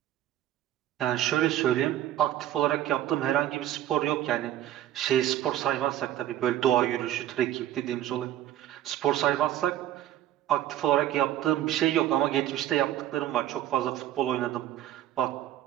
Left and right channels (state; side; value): quieter; left; 12.6 dB